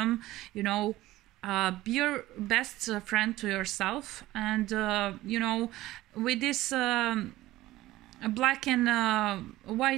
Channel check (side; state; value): left; quieter; 16.7 dB